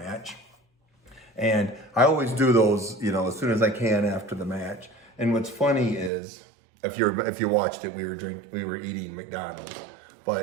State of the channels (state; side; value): drops out; left; at 6.1 s